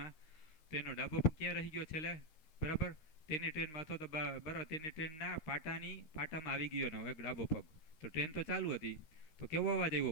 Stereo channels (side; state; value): right; late; 13 ms